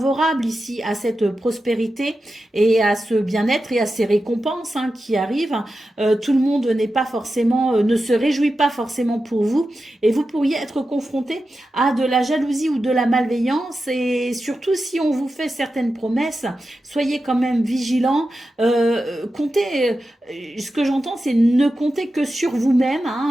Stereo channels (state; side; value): normal; both; correlation 0.91